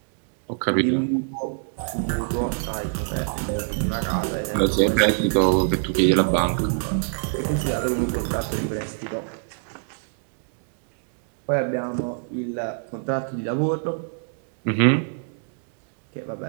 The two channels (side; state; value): left; silent; digital silence